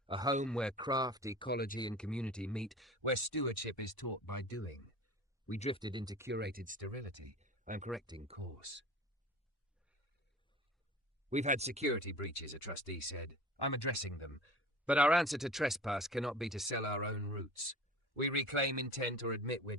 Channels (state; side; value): normal; both; correlation 0.40